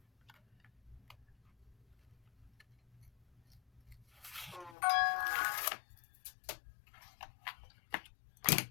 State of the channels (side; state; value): right; drops out; at 4.8 s